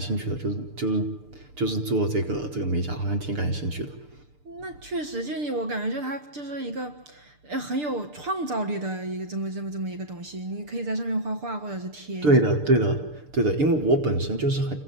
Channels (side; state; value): left; late; 6.8 ms